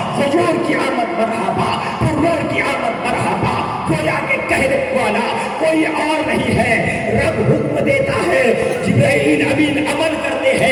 حضور کی آمد مرحبا، پرور کی آمد مرحبا۔ گویا کہ کہنے والا کوئی اور نہیں ہے، رب حکم دیتا ہے، جبرائیل امین عمل کرتے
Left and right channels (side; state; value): both; identical; correlation 1.00